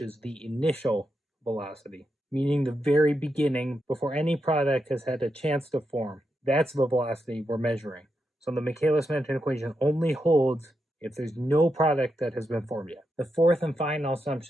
the initial velocity. meaning the very beginning before any product has had a chance to form. That's the velocity we're measuring. So the Michaelis-Menten equation only holds if there's no product that has been formed yet. The fourth and final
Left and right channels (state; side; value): normal; both; correlation 0.85